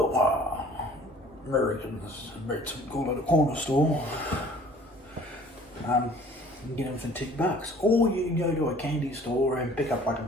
Americans, call it a corner store, you can get them for $2. Or you can go to a candy store and pick up like a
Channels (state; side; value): normal; both; correlation 0.52